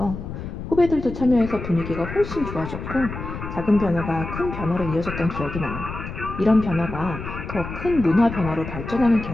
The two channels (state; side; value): noise; left; rumble, 8 dB below the sound